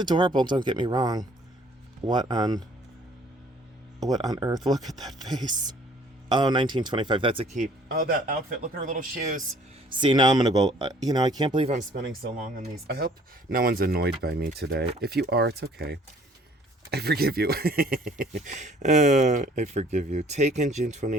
don't get me wrong. What on earth? Look at that face. Oh, 1925. That's a keep. Oh, that outfit. Look at her little shoes. See, now I'm going to go... I can't believe I'm spending so long on these. I hope no one's annoyed by me today. If you are, it's okay. I forgive you. I forgive you. Taken June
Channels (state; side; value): normal; both; correlation 0.57